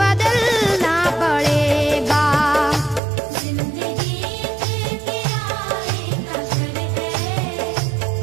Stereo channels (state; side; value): drops out; left; at 3.0 s